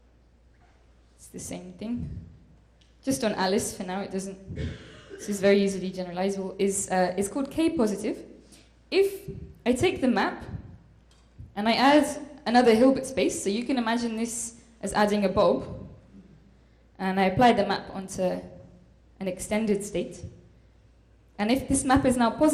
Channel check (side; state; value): both; identical; correlation 1.00